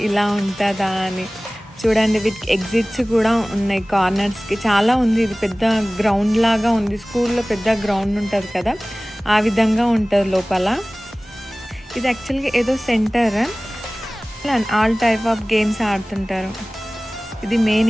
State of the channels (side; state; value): both; normal; correlation 0.98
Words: ఇలా ఉంటుందా అని. చూడండి, వీటికి ఎగ్జిట్స్ కూడా ఉన్నాయి కార్నర్స్కి, చాలా ఉంది. ఇది పెద్ద గ్రౌండ్ లాగా ఉంది, స్కూల్లో పెద్ద గ్రౌండ్ ఉంటుంది కదా, ఆ విధంగా ఉంటుంది లోపల. ఇది యాక్చువల్గా ఏదో centre, all type of games ఆడుతుంటారు. ఇది మెయిన్